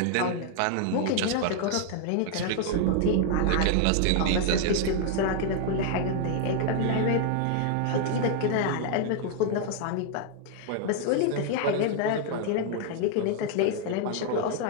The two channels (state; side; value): different; both; correlation 0.00